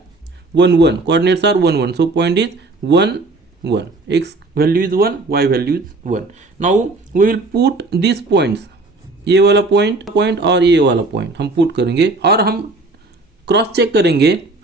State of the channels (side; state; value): left; quieter; 3.3 dB